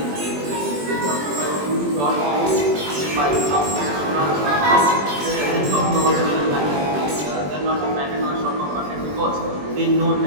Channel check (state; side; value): late; left; 21 ms